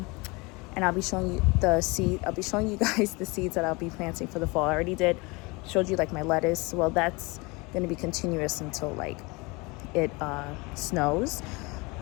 I'll be showing you guys the seeds that I'll be planting for the fall. I already showed you like my lettuce. Well, that's going to be continuous until like it snows.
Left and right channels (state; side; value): quieter; right; 25.9 dB